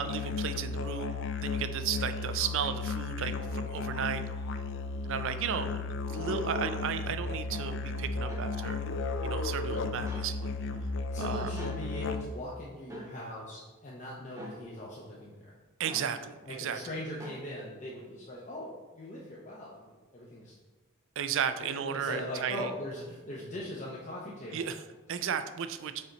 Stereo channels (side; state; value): both; normal; correlation 0.22